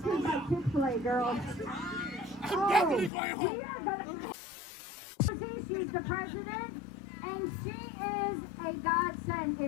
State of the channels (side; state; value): right; drops out; at 3.1 s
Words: by Chick-fil-A, girls. definitely going home. We are gonna. She's the president, and she is a godsend.